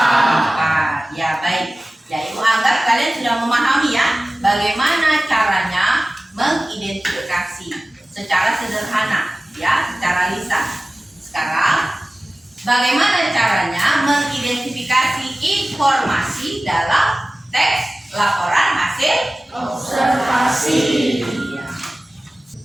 Ya, baik. Ya, Ibu anggap kalian sudah memahami ya bagaimana caranya mengidentifikasi secara sederhana, ya, secara lisan. Sekarang, bagaimana caranya mengidentifikasi informasi dalam teks laporan hasil observasi?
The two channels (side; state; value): both; normal; correlation 0.97